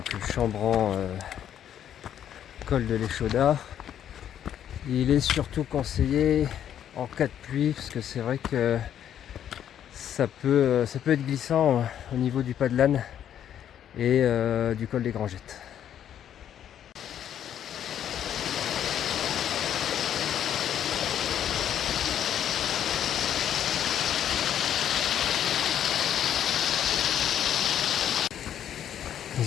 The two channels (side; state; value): right; quieter; 10.0 dB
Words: Chambran, col de l'Échaudat, il est surtout conseillé en cas de pluie, parce que c'est vrai que ça peut être glissant au niveau du Pas de l'Âne et du col des Grangettes.